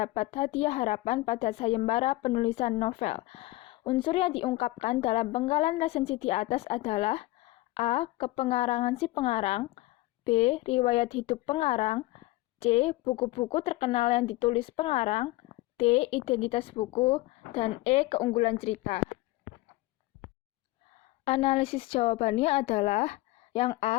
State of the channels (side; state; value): right; quieter; 19.0 dB